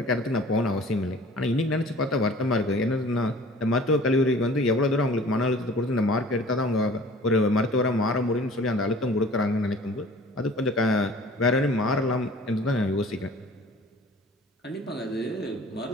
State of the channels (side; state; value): both; normal; correlation 0.47